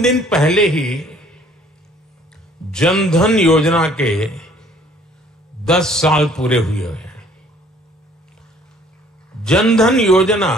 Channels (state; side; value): normal; both; correlation 0.57